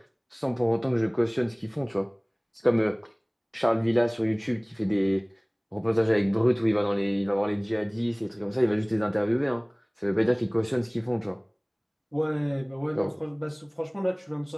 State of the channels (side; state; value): both; identical; correlation 1.00